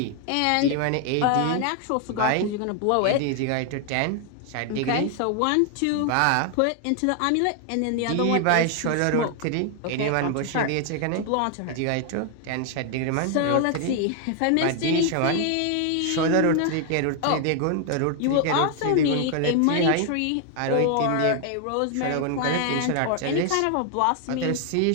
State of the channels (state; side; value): different; both; correlation 0.00